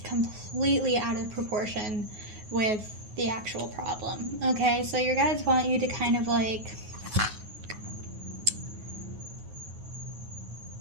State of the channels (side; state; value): left; late; 9.4 ms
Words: completely out of proportion with the actual problem. Okay, so your guides want you to kind of like,